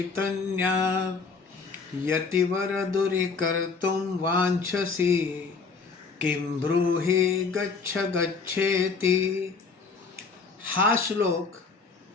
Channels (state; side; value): quieter; right; 4.7 dB